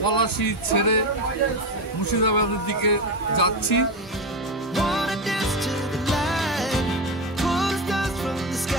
পলাশী ছেড়ে মুর্শিদাবাদের দিকে যাচ্ছি। wanna dance to the light, pulls dust from the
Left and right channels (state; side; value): normal; both; correlation 0.16